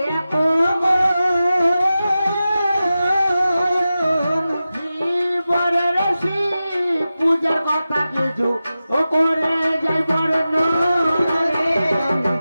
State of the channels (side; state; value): both; inverted; correlation -0.94